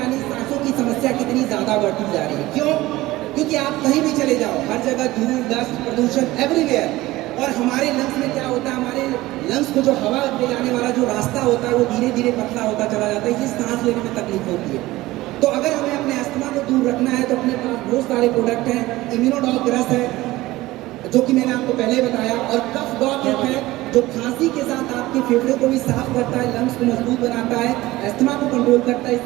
यानी सांसों की समस्या कितनी ज्यादा बढ़ती जा रही है। क्यों? क्योंकि आप कहीं भी चले जाओ, हर जगह धूल, डस्ट, प्रदूषण एवरीवेयर। और हमारे लंग्स में क्या होता है, हमारे लंग्स को जो हवा ले जाने वाला जो रास्ता होता है वो धीरे धीरे पतला होता चला जाता है, इसलिए सांस लेने में तकलीफ होती है। तो अगर हमें अपने अस्थमा को दूर रखना है तो अपने पास बहुत सारे प्रोडक्ट हैं। इम्यूनोडॉग रस है जो कि मैंने आपको पहले बताया, और कफ डॉग है जो खांसी के साथ आपके फेफड़े को भी साफ करता है, लंग्स को मजबूत बनाता है, अस्थमा को कंट्रोल करता है।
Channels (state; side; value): quieter; left; 18.2 dB